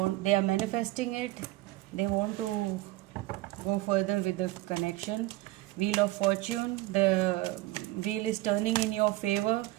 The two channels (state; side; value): quieter; left; 17.9 dB